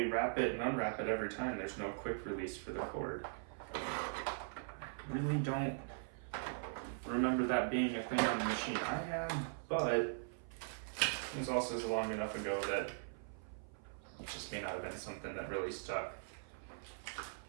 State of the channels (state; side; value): silent; left; 51 dB below the other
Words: wrap it and unwrap it every time. There's no quick release for the cord. I really don't remember that being a thing on the machine I had, but it was also long enough ago that it just may not have been something that really stuck.